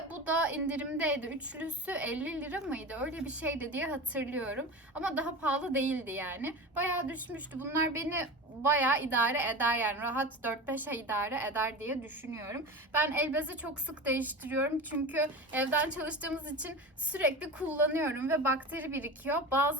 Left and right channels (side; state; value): both; normal; correlation 0.29